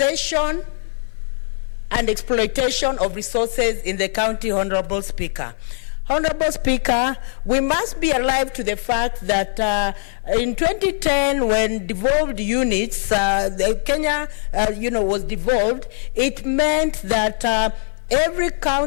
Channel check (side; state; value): right; silent; digital silence